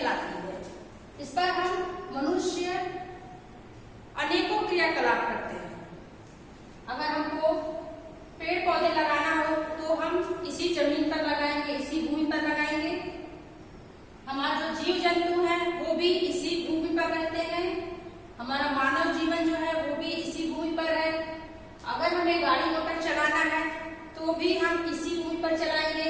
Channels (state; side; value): identical; both; correlation 1.00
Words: है। इस पर हम मनुष्य अनेकों क्रियाकलाप करते हैं। अगर हमको पेड़ पौधे लगाना हो तो हम इसी जमीन पर लगाएंगे, इसी भूमि पर लगाएंगे। हमारा जो जीव जंतु है वो भी इसी भूमि पर रहते हैं। हमारा मानव जीवन जो है वो भी इसी भूमि पर है। अगर हमें गाड़ी मोटर चलाना है तो भी हम इसी भूमि पर